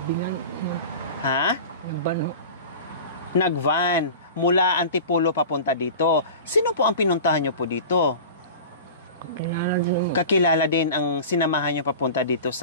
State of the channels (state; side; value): inverted; both; correlation -0.35